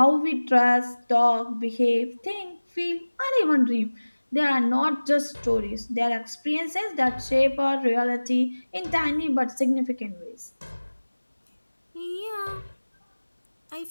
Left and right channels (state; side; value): inverted; both; correlation -1.00